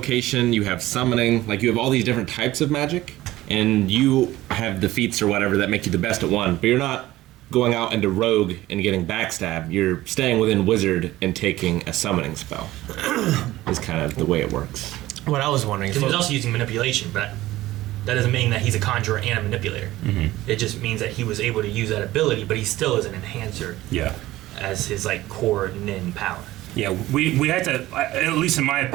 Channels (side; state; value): left; quieter; 16.5 dB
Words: you have summoning, like you have all these different types of magic, and you have the feats or whatever that make you the best at one, but you're not going out into rogue and getting backstab. You're staying within wizard and taking a summoning spell. Is kind of the way it works. What I was wondering. Because he was also using manipulation, but that doesn't mean that he's a conjurer and a manipulator. It just means that he was able to use that ability, but he still is an enhancer Yeah. as his like core nin power. Yeah, we had to, at least in my